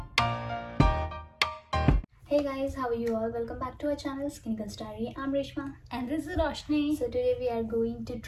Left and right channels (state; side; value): identical; both; correlation 1.00